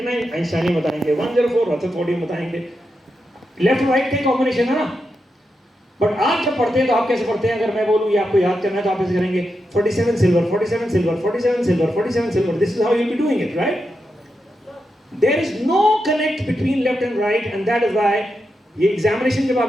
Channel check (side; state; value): both; normal; correlation 0.87